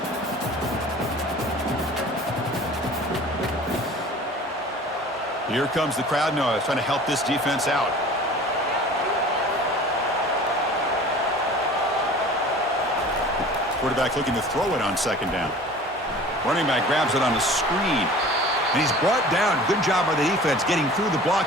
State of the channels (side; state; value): both; normal; correlation 0.43